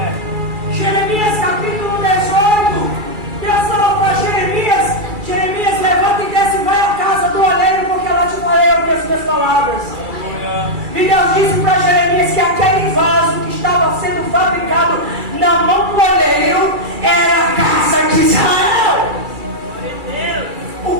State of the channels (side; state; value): left; late; 2.3 ms